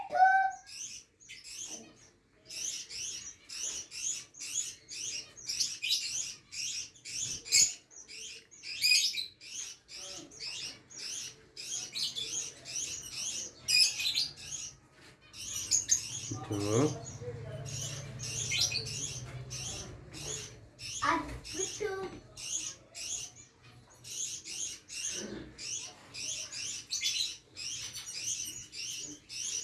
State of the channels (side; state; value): both; identical; correlation 1.00